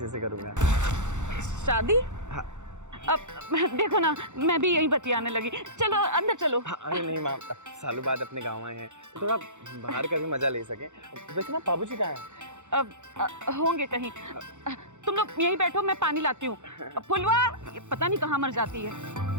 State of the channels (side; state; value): left; late; 0.84 ms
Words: से करूँगा। शादी? हाँ। अब देखो ना, मैं भी यही बतियाने लगी। चलो अंदर चलो। हाँ, अरे नहीं माँ, सालों बाद अपने गाँव आए हैं, थोड़ा बाहर का भी मजा ले सके। वैसे ना बाबूजी कहाँ है? होंगे कहीं। तुम लोग यहीं बैठो, मैं पानी लाती हूँ। फुलवा ये पता नहीं कहाँ मर जाती है।